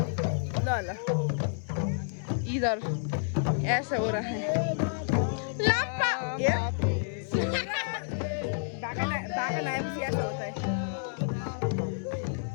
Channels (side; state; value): right; silent; digital silence